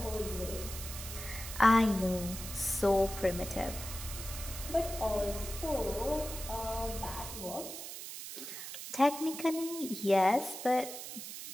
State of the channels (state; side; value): noise; right; hiss, 9 dB below the sound